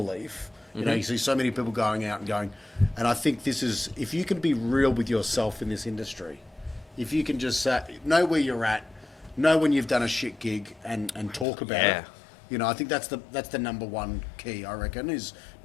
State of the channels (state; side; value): drops out; right; at 11.5 s